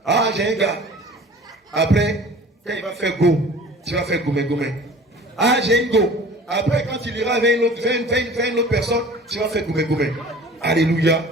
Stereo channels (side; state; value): both; normal; correlation 0.44